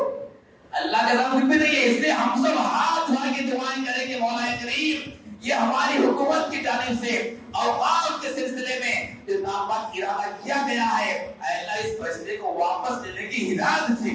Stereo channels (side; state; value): both; identical; correlation 1.00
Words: اللہ کے سامنے کچھ بھی نہیں ہے. اس لیے ہم سب ہاتھ اٹھا کے دعائیں کریں کہ مولا کریم، یہ ہماری حکومت کی جانب سے اوقاف کے سلسلے میں جو ناپاک ارادہ کیا گیا ہے، اے اللہ اس فیصلے کو واپس لینے کی ہدایت